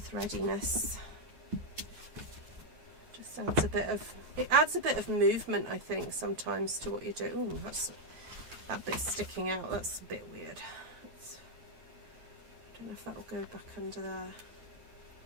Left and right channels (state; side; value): late; left; 9.4 ms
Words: Just adds a bit of, it adds a bit of movement, I think, sometimes to what you do. Oh, that's that bit sticking out. That's a bit weird. I don't know if that'll go back under there.